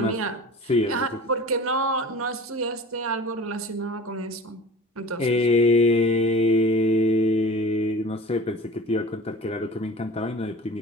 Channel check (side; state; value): both; normal; correlation 0.39